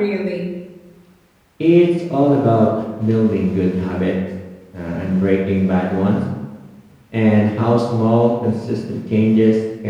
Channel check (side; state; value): both; identical; correlation 1.00